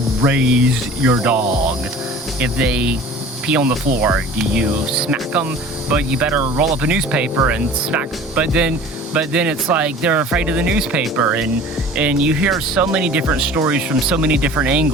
raise your dog. If they pee on the floor, do you smack them? But you better roll up a newspaper and smack. But then it's like they're afraid of the newspaper, and you hear so many different stories from so many different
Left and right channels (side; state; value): both; normal; correlation 0.43